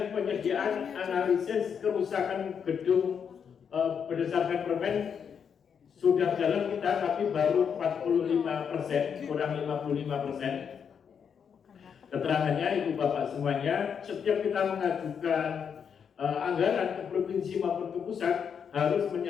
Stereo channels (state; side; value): quieter; right; 7.2 dB